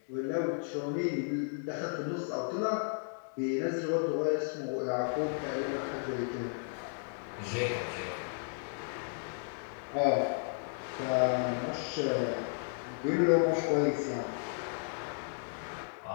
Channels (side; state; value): right; silent; digital silence